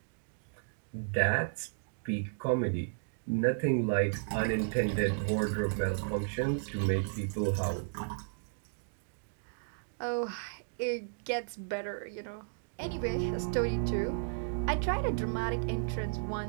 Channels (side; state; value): left; silent; digital silence